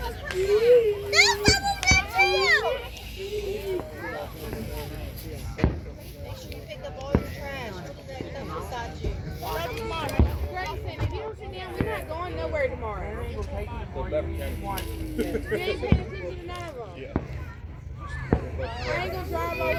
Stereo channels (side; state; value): both; identical; correlation 1.00